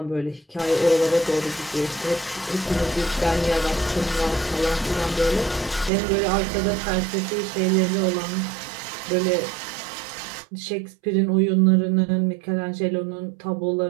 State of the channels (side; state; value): left; drops out; at 5.9 s